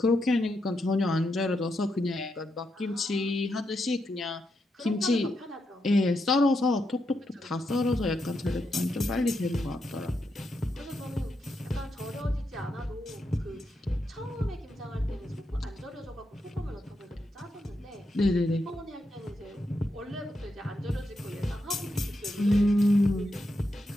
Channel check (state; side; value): normal; both; correlation 0.84